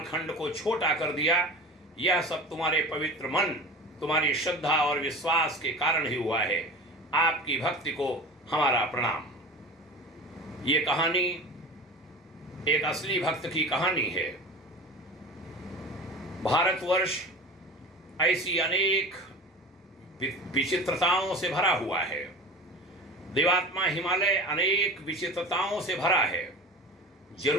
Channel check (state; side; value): normal; both; correlation 0.35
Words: को छोटा कर दिया। यह सब तुम्हारे पवित्र मन, तुम्हारी श्रद्धा और विश्वास के कारण ही हुआ है। आपकी भक्ति को हमारा प्रणाम। ये कहानी एक असली भक्त की कहानी है। भारतवर्ष ऐसी अनेक विचित्रताओं से भरा हुआ है। देवात्मा हिमालय अनेक विचित्रताओं से भरा है।